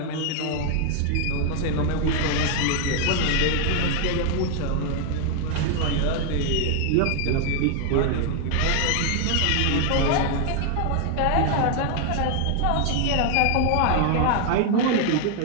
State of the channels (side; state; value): both; different; correlation 0.00